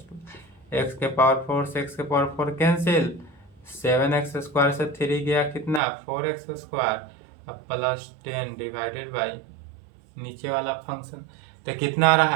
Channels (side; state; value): left; drops out; at 5.8 s